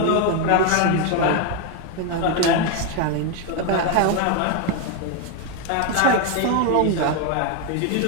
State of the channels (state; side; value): different; both; correlation 0.01